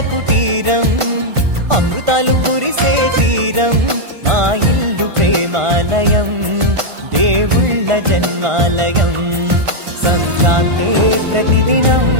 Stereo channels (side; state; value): left; late; 1.5 ms